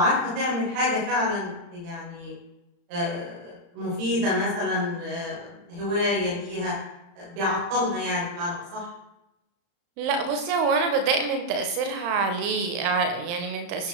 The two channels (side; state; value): left; late; 35 ms